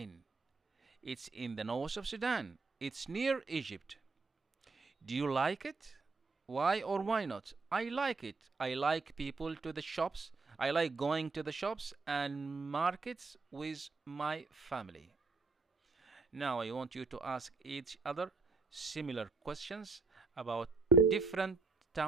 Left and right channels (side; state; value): left; quieter; 4.1 dB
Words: It's in the north of Sudan. It's near Egypt. Do you like it? Why or why not? I like it. I like people to the shops. I like going to the shops and markets with my family. Now I want you to ask each other similar questions about different